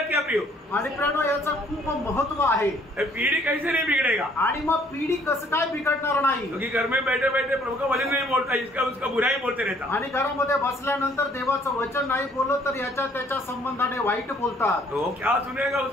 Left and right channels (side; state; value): both; normal; correlation 0.61